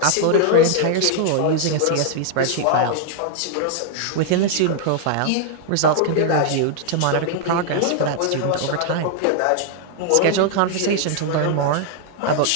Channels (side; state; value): both; different; correlation 0.00